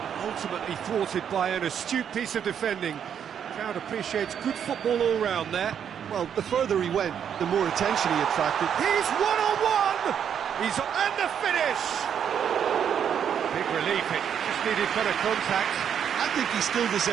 ultimately thwarted by an astute piece of defending. Crowd appreciates good football all round there. Well, the further he went, the more attention he attracted. He's one-on-one! He's and the finish! Big relief, it just needed better contact. I think he still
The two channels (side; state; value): left; quieter; 8.4 dB